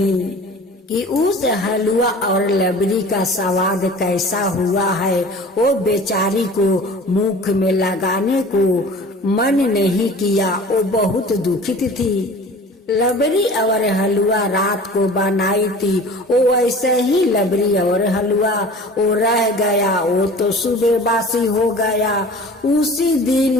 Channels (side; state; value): both; normal; correlation 0.42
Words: कि उस हलवा और लबरी का स्वाद कैसा हुआ है। वो बेचारी को मुख में लगाने को मन नहीं किया, वो बहुत दुखित थी। लबरी और हलवा रात को बनाई थी, वो ऐसे ही लबरी और हलवा वो रह गया, वो तो सुबह बासी हो गया। उसी